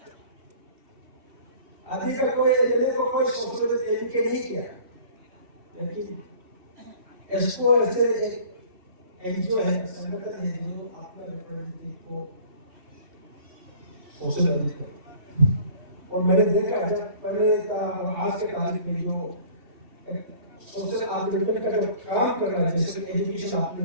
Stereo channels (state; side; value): late; left; 3.4 ms